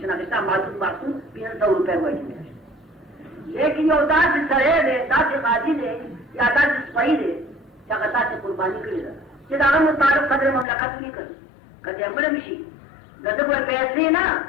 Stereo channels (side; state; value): right; drops out; at 10.7 s